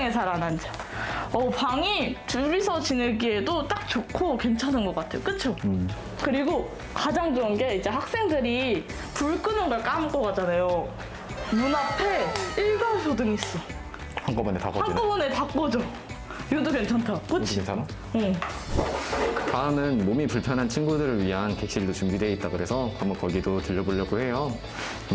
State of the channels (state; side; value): identical; both; correlation 1.00